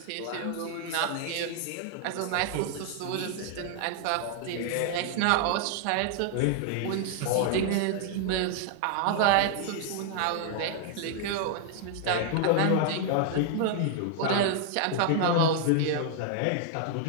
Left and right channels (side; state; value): both; different; correlation 0.00